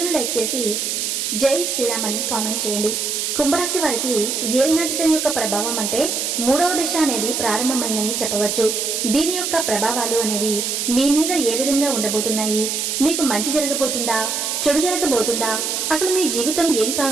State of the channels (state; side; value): noise; right; hiss, 1 dB below the sound